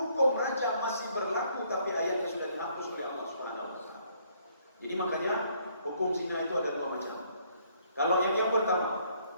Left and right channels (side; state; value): both; inverted; correlation -0.66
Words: rajam masih berlaku, tapi ayatnya sudah dihapus oleh Allah Subhanahu wa taala. Jadi makanya hukum zina itu ada dua macam. Kalau yang pertama,